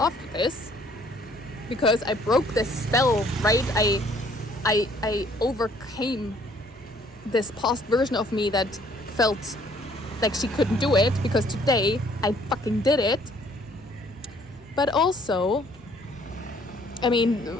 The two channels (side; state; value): both; normal; correlation 0.61